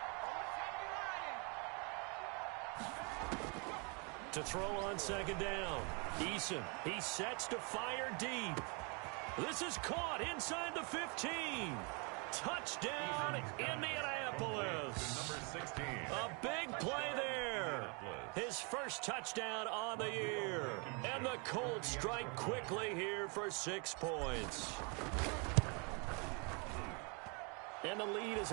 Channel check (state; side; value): quieter; left; 33.3 dB